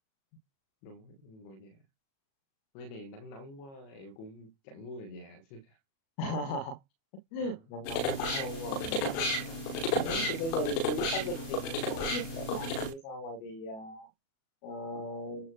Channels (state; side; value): late; right; 37 ms